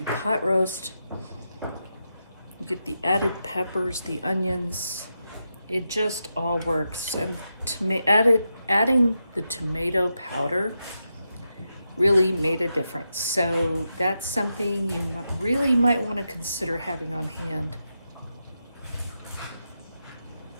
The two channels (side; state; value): both; inverted; correlation -0.87